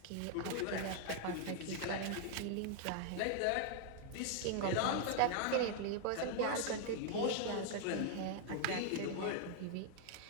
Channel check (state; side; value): different; both; correlation 0.00